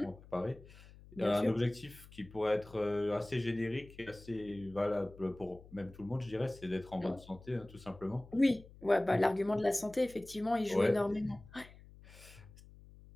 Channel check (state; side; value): noise; left; hum, 20 dB below the sound